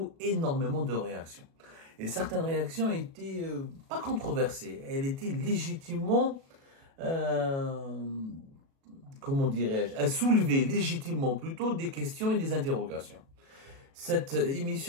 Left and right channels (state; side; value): late; left; 37 ms